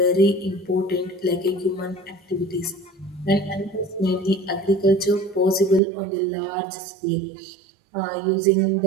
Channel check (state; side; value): drops out; left; at 5.8 s